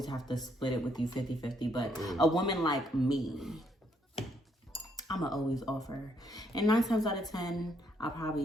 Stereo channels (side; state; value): both; normal; correlation 0.72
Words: have to split it with you 50-50, but a woman like me, I'ma always offer. And 9 times out of 10, I'll